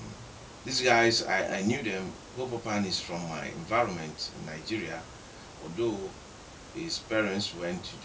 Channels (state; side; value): identical; both; correlation 1.00